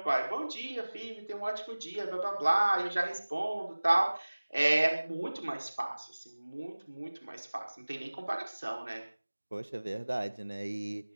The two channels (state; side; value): inverted; both; correlation -1.00